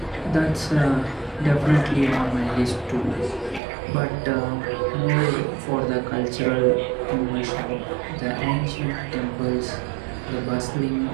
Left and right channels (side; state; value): left; drops out; at 3.6 s